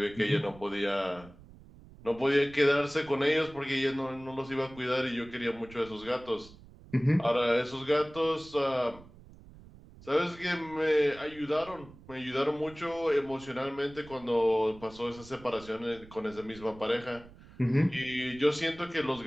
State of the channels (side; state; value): right; noise; rumble, 21 dB below the sound